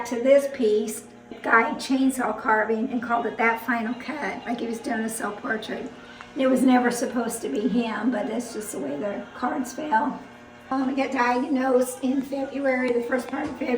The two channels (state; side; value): identical; both; correlation 1.00